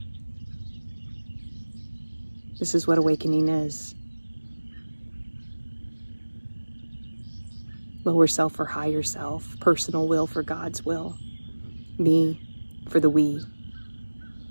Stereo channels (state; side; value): inverted; both; correlation -1.00